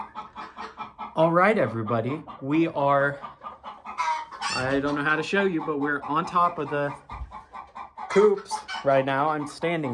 All right, everybody, we are, I don't know how to show you, but we're on top of the coops right now. I'm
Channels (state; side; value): identical; both; correlation 1.00